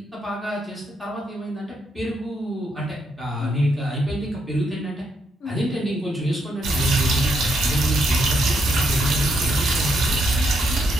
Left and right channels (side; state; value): both; normal; correlation 0.77